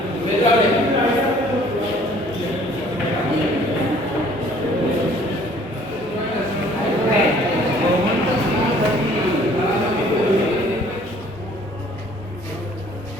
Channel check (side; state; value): both; normal; correlation 0.56